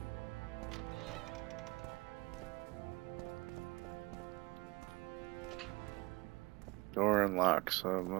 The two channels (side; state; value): left; quieter; 23.4 dB